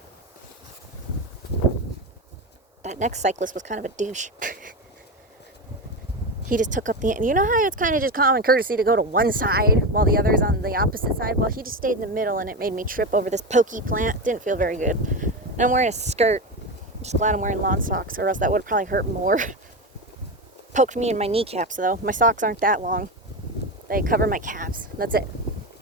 That next cyclist was kind of a douche. He just took up the... You know how it's kind of just common courtesy to go to one side while the other's on the opposite side? Well, he just stayed in the middle and it made me trip over this pokey plant. Didn't feel very good. And I'm wearing a skirt. I'm just glad I'm wearing lawn socks or else that would probably hurt more. Poked me in my kneecaps though. My socks aren't that long. They cover my calves. That's it.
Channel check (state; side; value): normal; both; correlation 0.17